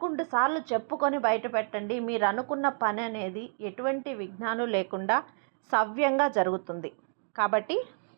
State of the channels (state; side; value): silent; left; digital silence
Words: సార్లు చెప్పుకొని బయట పెట్టండి. మీరు అనుకున్న పని అనేది ఎటువంటి విఘ్నాలు లేకుండా సవ్యంగా జరుగుతుంది. కాబట్టి